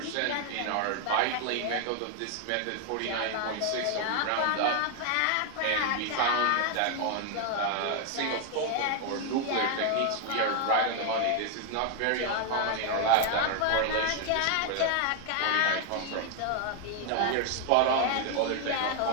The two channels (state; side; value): different; both; correlation 0.00